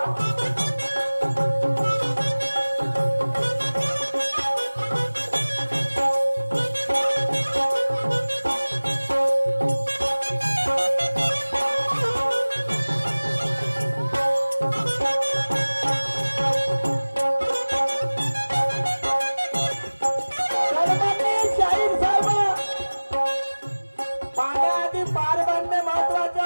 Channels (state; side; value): inverted; both; correlation -1.00